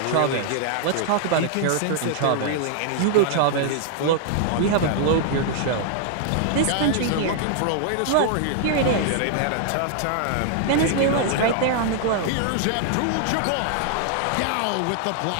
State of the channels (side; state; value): both; different; correlation 0.00